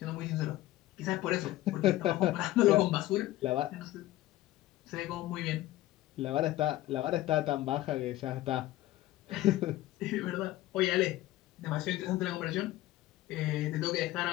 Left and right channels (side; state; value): right; quieter; 15.8 dB